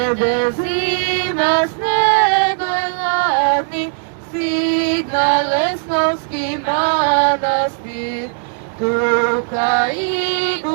zima snega hladni, stigna Lesnovski manastir, tuka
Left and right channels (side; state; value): left; silent; digital silence